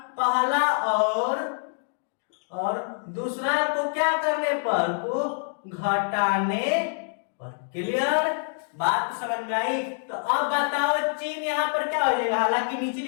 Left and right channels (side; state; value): right; silent; digital silence